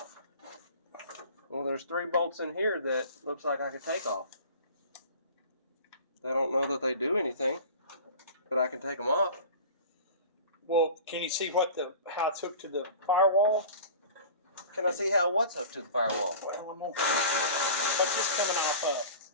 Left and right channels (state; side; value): inverted; both; correlation -0.39